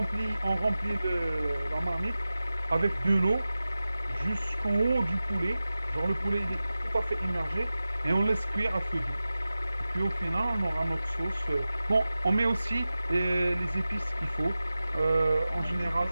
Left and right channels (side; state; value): both; inverted; correlation -0.95